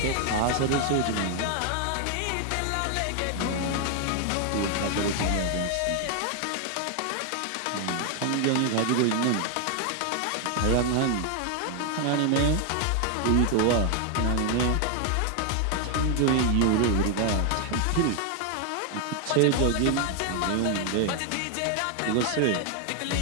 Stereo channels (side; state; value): both; different; correlation 0.00